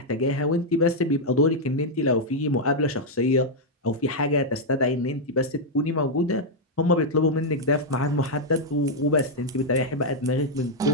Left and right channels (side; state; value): both; normal; correlation -0.02